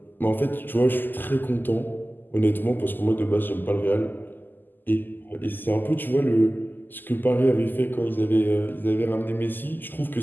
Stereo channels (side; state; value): right; late; 0.090 ms